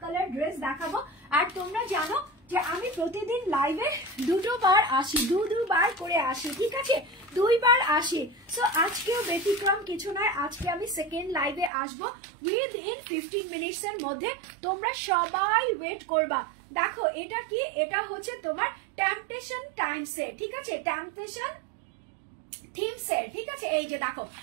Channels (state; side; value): drops out; left; at 11.7 s